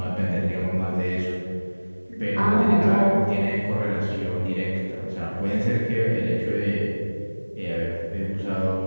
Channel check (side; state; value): both; inverted; correlation -1.00